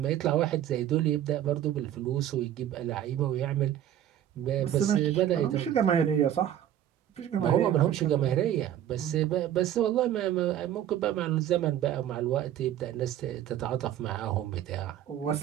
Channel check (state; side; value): quieter; left; 11.2 dB